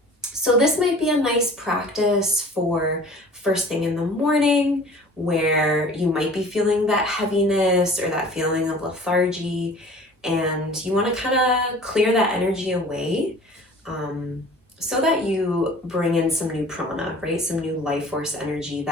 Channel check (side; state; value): both; normal; correlation 0.46